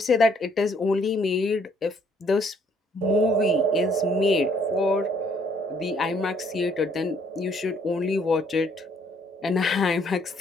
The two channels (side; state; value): both; normal; correlation 0.65